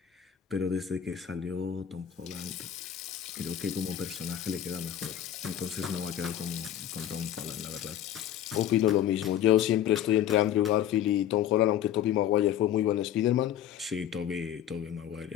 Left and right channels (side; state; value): right; quieter; 10.6 dB